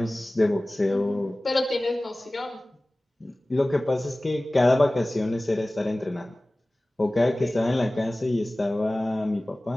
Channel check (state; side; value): normal; both; correlation 0.98